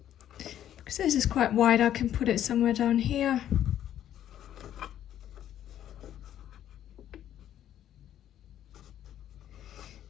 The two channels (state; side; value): quieter; right; 11.1 dB